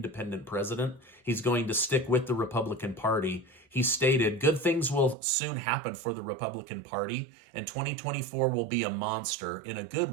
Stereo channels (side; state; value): left; drops out; at 5.2 s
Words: president. He's going to stick with the Republican Party. He stated, good things will soon happen for the Republican Party, and 2024 will be a monster, in a good